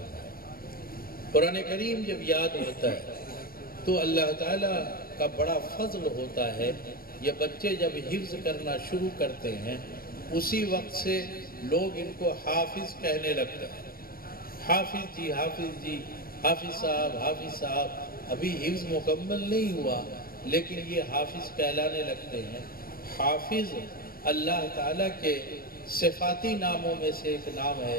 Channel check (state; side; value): late; right; 0.43 ms